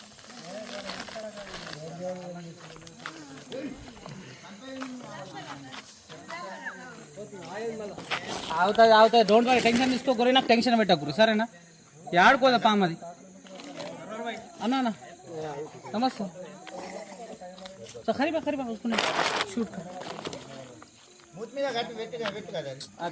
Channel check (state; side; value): identical; both; correlation 1.00